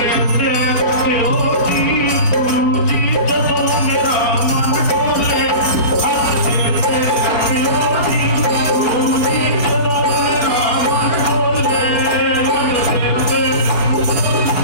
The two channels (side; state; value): right; late; 4.3 ms